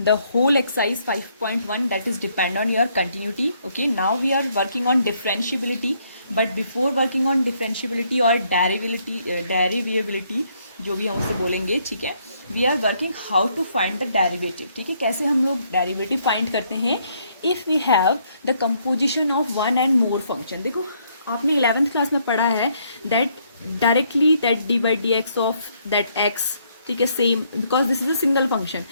the whole exercise 5.1 that is depend on your continuity. Okay, now we are working on differentiability, but before working on differentiability or derivability जो भी हम उसे बोलेंगे, ठीक है, we are working how to find the derivative. ठीक है, कैसे हम लोग डेरिवेटिव फाइंड करते हैं if we have the composition of one and more function. देखो आपने 11th क्लास में पढ़ा है that directly that d by d x of that x, ठीक है, same because this is a single function.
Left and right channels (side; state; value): both; inverted; correlation -0.70